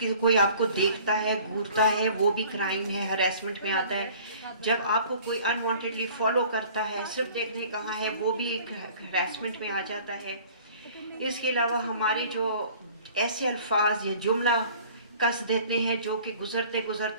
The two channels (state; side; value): inverted; both; correlation -0.50